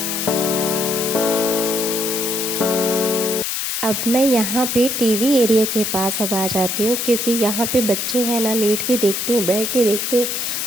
अब मैं यहाँ पे टीवी एरिया के पास अब आ जाती हूँ, क्योंकि यहाँ पे बच्चे हैं ना, लेट के देखते हैं, बैठ के देखते हैं,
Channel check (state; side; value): noise; left; hiss, 2 dB below the sound